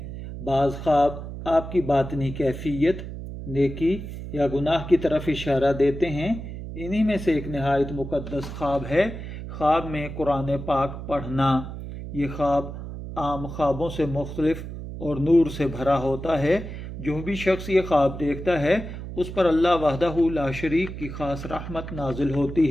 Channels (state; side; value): noise; right; hum, 9 dB below the sound